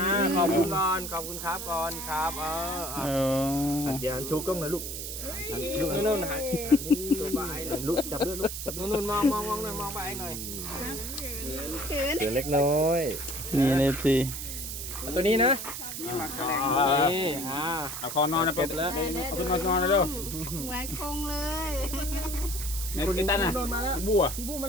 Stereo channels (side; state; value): right; noise; hiss, 6 dB below the sound